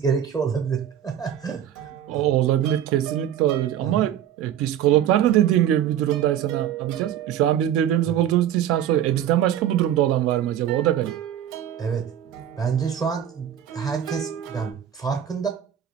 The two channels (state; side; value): quieter; left; 10.5 dB